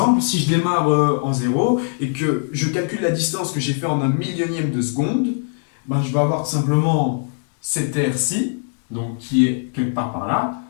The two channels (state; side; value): silent; right; digital silence